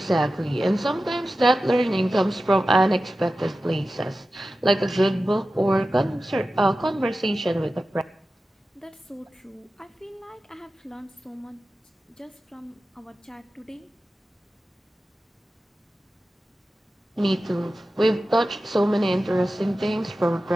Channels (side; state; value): both; normal; correlation 0.94